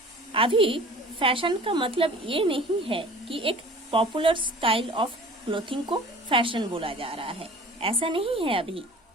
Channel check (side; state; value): both; normal; correlation 0.45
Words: अभी फैशन का मतलब ये नहीं है कि एक पॉपुलर स्टाइल ऑफ क्लोथिंग को फैशन बोला जा रहा है, ऐसा नहीं है अभी।